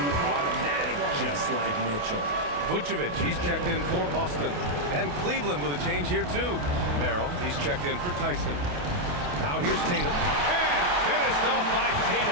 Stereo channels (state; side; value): late; left; 28 ms